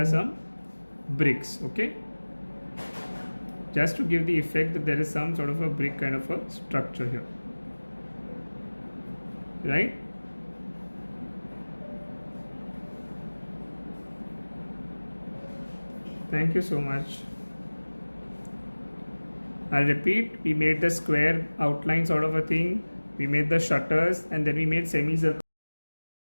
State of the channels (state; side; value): inverted; both; correlation -1.00